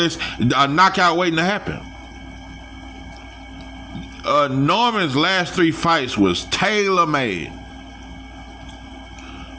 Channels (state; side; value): identical; both; correlation 1.00